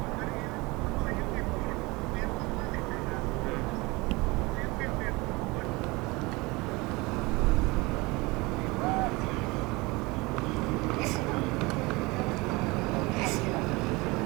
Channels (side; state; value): left; quieter; 24.0 dB